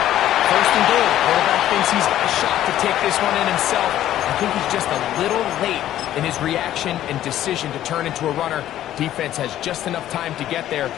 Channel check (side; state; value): right; quieter; 12.6 dB